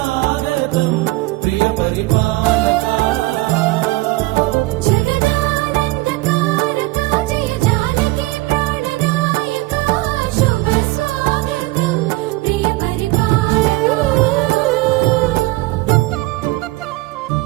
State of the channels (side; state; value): left; quieter; 20.1 dB